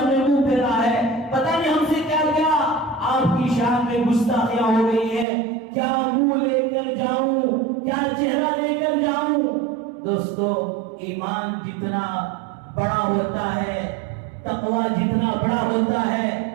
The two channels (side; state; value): left; drops out; at 5.2 s